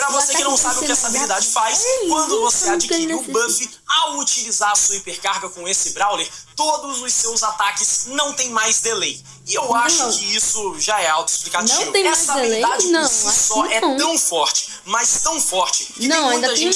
você que não sabe o que essa habilidade faz, quando você adquire o buff, ao utilizar a sua hipercarga com esse Brawler, todos os seus ataques não tem mais delay. E eu acho que isso já é autoexplicativo. Essa habilidade por si só é tão forte, mas tão forte, que tem muita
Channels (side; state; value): both; identical; correlation 1.00